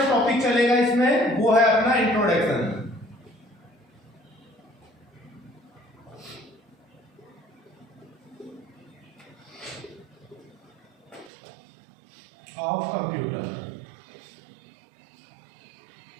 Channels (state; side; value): drops out; left; at 11.3 s